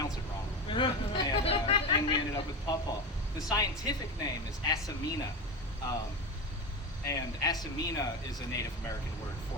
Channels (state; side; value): normal; both; correlation 0.22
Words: it wrong. And we ended up with pawpaw. The scientific name is Asamina. And Asamina is a Native American word